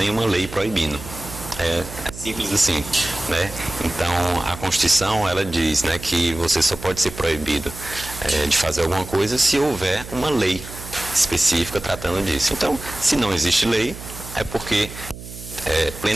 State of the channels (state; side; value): noise; right; hum, 13 dB below the sound